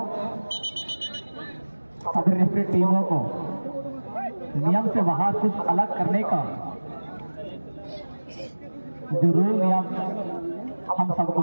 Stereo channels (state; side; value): inverted; both; correlation -1.00